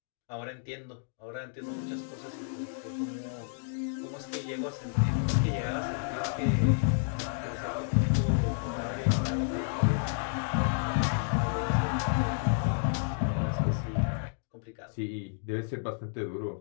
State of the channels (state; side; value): silent; right; digital silence